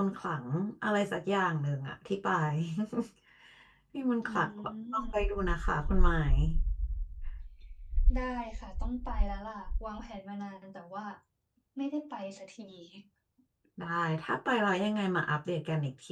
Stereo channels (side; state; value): both; identical; correlation 1.00